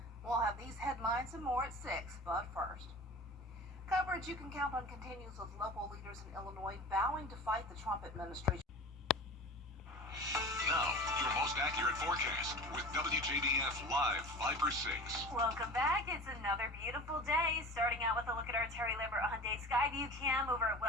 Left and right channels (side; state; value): both; normal; correlation 0.36